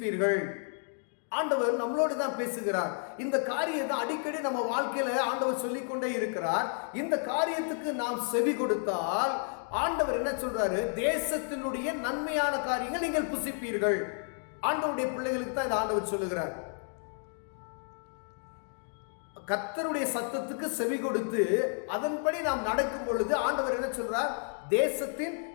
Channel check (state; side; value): silent; right; 57 dB below the other